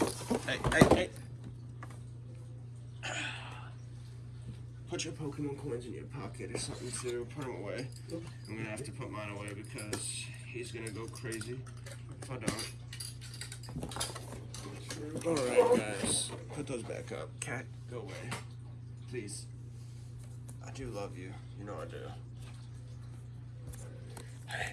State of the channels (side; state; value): both; identical; correlation 1.00